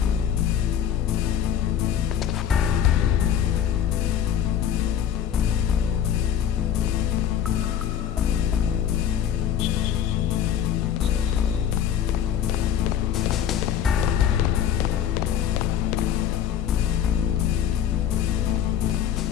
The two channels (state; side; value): quieter; right; 9.2 dB